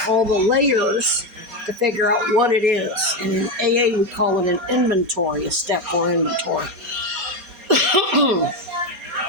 all the layers to figure out what it is. And in AA, we call it an inventory, a step 4 inventory.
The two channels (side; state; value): left; late; 4.2 ms